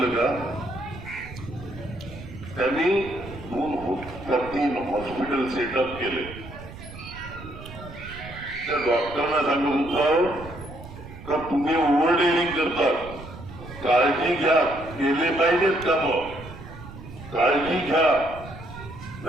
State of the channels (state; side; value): noise; right; rumble, 14 dB below the sound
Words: का? त्यांनी 2-3 हॉस्पिटल सेटअप केले. त्या डॉक्टरांना सांगत होतो का तुम्ही ओव्हरडेलिंग करतात, काळजी घ्या, केले पाहिजेत काम, काळजी घ्या.